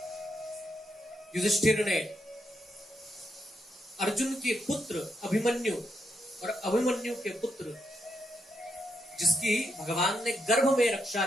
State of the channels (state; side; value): normal; both; correlation 0.81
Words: युधिष्ठिर ने अर्जुन के पुत्र अभिमन्यु और अभिमन्यु के पुत्र जिसकी भगवान ने गर्भ में रक्षा